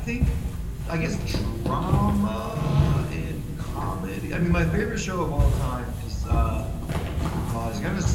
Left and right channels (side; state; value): both; identical; correlation 1.00